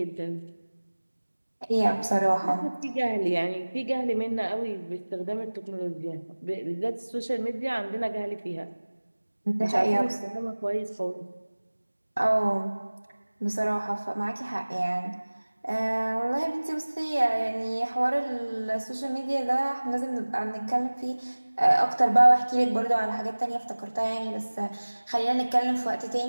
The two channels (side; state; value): both; inverted; correlation -1.00